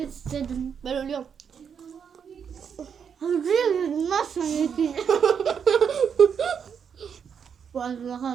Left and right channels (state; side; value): quieter; left; 7.2 dB